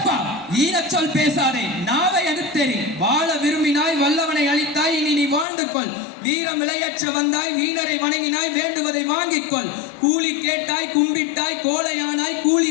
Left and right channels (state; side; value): drops out; right; at 5.5 s